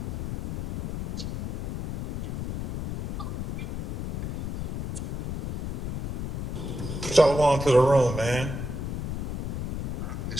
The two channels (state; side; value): noise; left; rumble, 2 dB below the sound